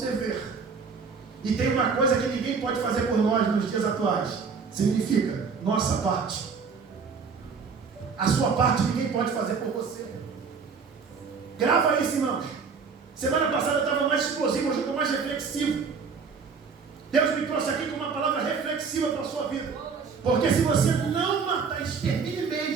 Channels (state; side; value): quieter; left; 5.4 dB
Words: dever. E tem uma coisa que ninguém pode fazer por nós nos dias atuais. Significa nossa parte. A sua parte ninguém pode fazer por você. Grava isso, irmãos. Semana passada eu estava mais explosivo, hoje eu estou mais reflexivo. Deus me trouxe aqui com uma palavra reflexiva para a sua vida. Porque se você não matar, extermine